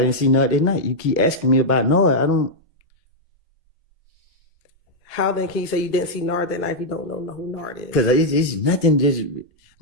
didn't see Nud that night. You keep asking me about Nud. I don't. How then can you say you didn't see Nard that night if you don't know who Nard is? Because it's nothing. Just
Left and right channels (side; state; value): both; normal; correlation -0.03